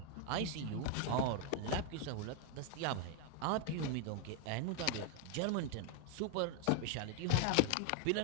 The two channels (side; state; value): both; different; correlation 0.00